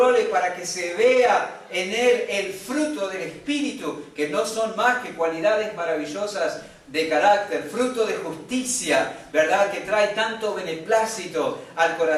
para que se vea en él el fruto del Espíritu, que no son más que cualidades maravillosas de carácter, fruto de justicia, ¿verdad? Que trae tanto beneplácito al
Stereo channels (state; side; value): identical; both; correlation 1.00